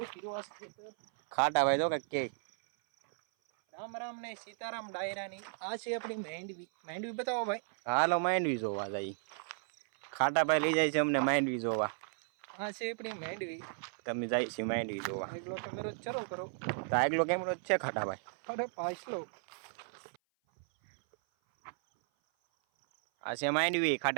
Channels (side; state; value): left; silent; 55 dB below the other